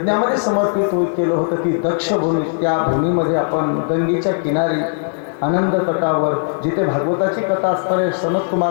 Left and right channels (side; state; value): right; silent; digital silence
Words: समर्पित केलं होतं, ती दक्ष भूमी, त्या भूमीमध्ये आपण गंगेच्या किनारी आनंद तटावर जिथे भागवताची कथा असणारे सनत